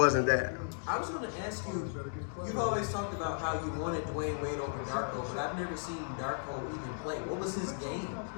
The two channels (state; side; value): silent; right; digital silence